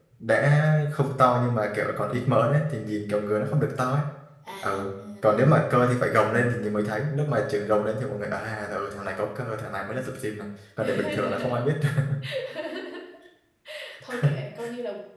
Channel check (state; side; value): identical; both; correlation 1.00